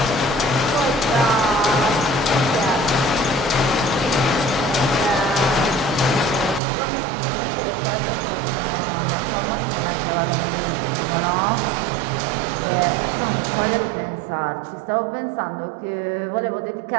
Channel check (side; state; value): left; drops out; at 6.6 s